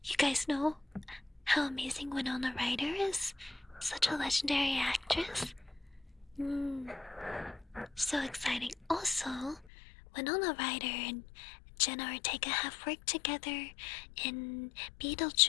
You guys know how amazing Winona Ryder is? Such a legendary actress. So exciting. Also, Winona Ryder and Jenna Ortega have worked together in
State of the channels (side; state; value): right; drops out; at 9.7 s